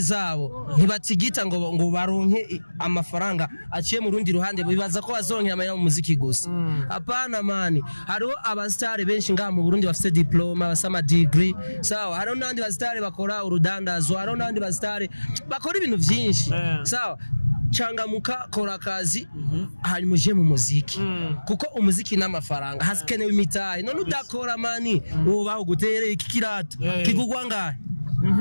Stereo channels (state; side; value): inverted; both; correlation -1.00